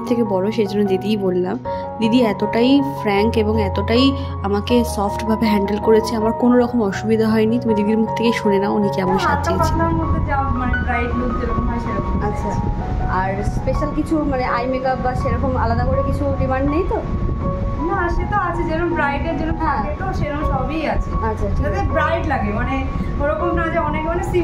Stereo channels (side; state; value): both; identical; correlation 1.00